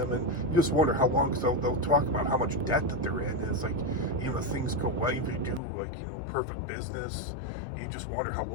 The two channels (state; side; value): drops out; right; at 5.6 s